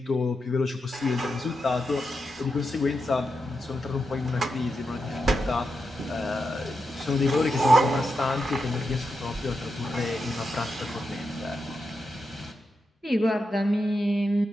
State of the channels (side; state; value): both; normal; correlation 0.87